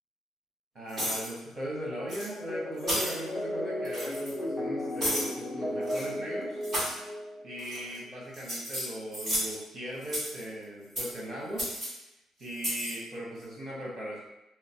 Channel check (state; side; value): normal; both; correlation 0.76